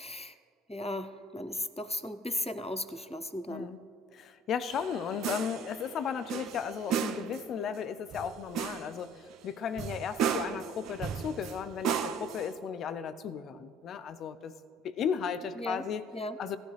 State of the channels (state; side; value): normal; both; correlation 0.54